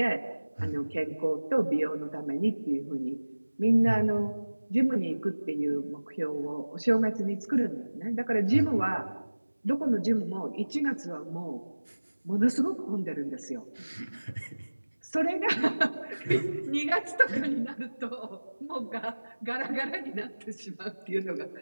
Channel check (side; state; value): both; inverted; correlation -1.00